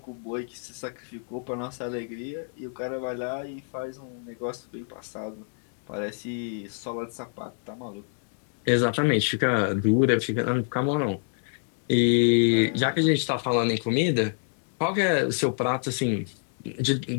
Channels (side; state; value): right; silent; 59 dB below the other